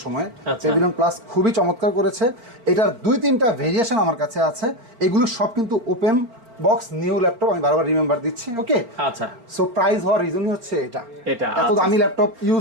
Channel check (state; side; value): late; left; 4.3 ms